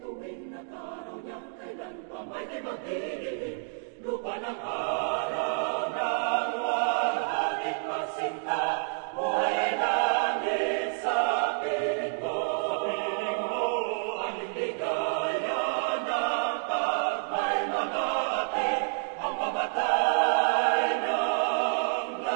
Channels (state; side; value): silent; left; 59 dB below the other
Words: at araw niyang kailan pa may di magdidingin. Lupa ng